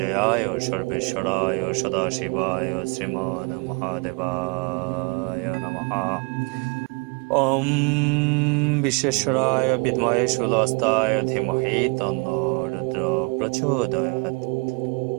সর্বেশ্বরায় সদাশিবায় শ্রীমন মহাদেবায় নমঃ। ওম বিশ্বেশ্বরায় বিদ্মহে শূলহস্তায় ধীমহি তন্নো রুদ্র প্রচোদয়াৎ।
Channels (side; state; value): left; quieter; 31.8 dB